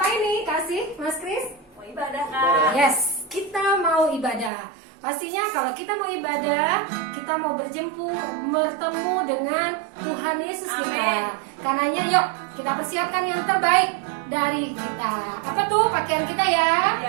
nih, Kasih, Mas Kris? Mau ibadah, Kak. Yes, kita mau ibadah. Pastinya kalau kita mau ibadah, kita mau bertemu dengan Tuhan Yesus kita. Karenanya yuk kita persiapkan yang terbaik dari kita. Apa tuh pakaian kita ya?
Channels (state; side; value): drops out; left; at 4.5 s